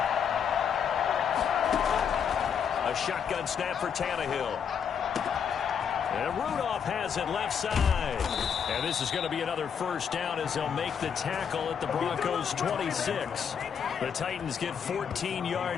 A shotgun snap for Tannehill. And Rudolph has it left side. And this is going to be another 1st down as they'll make the tackle at the Broncos' 26. The Titans get 14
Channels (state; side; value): quieter; right; 7.5 dB